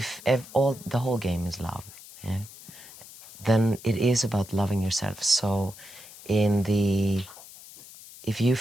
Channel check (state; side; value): noise; left; hiss, 18 dB below the sound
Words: the whole game is love, then it is about loving yourself. So in the if you